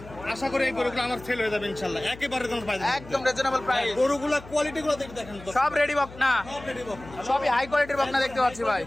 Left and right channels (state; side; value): noise; left; hum, 17 dB below the sound